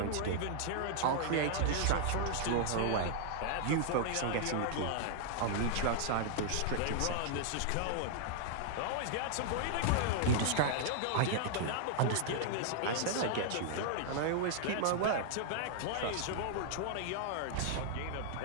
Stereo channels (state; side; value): different; both; correlation -0.01